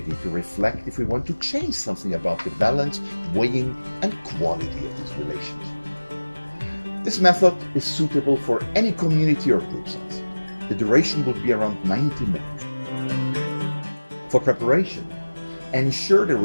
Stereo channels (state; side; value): inverted; both; correlation -1.00